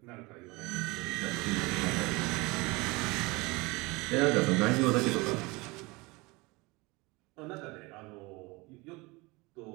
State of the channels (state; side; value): quieter; left; 24.5 dB